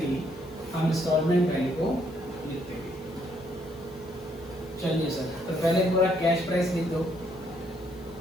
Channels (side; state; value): left; noise; hiss, 26 dB below the sound